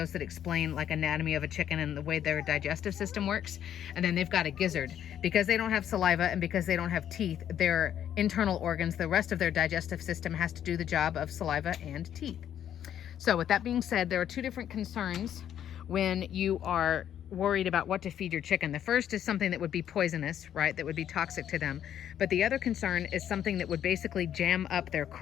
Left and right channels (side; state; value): right; quieter; 10.1 dB